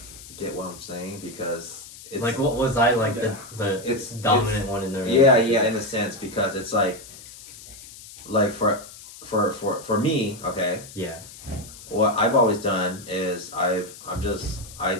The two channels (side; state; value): left; noise; hiss, 17 dB below the sound